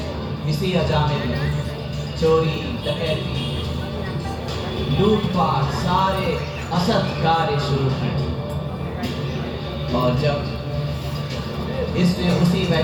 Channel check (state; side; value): identical; both; correlation 1.00